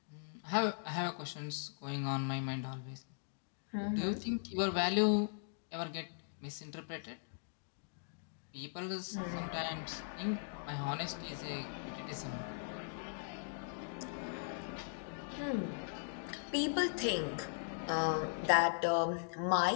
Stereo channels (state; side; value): silent; right; digital silence